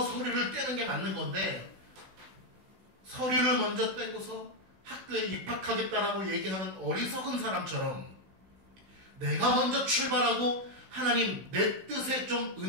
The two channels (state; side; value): late; left; 16 ms